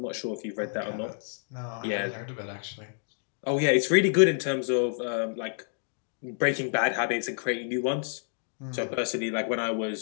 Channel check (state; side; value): silent; right; digital silence